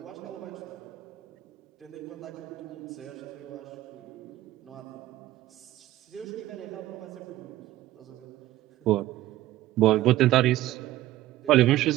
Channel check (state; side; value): quieter; left; 15.1 dB